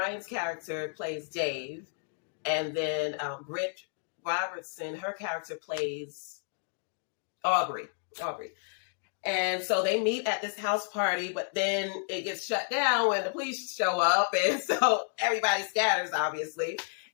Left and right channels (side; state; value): right; silent; digital silence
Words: character plays Dave, and then Britt Robertson, her character plays Aubrey. And so they meet at this house party, but then it gets shut down when the police show up, and so everybody scatters, obviously.